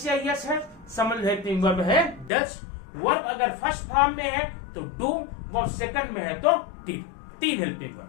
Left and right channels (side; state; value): right; drops out; at 2.3 s